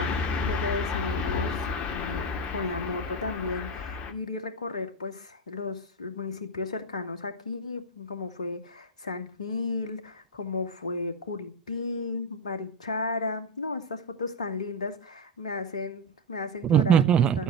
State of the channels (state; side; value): normal; both; correlation 0.10